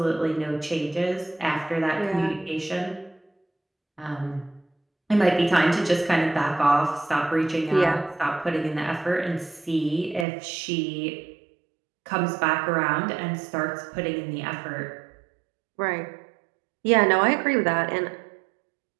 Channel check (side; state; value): left; drops out; at 10.2 s